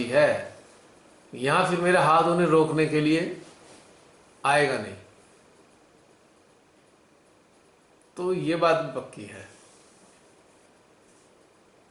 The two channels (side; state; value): both; identical; correlation 1.00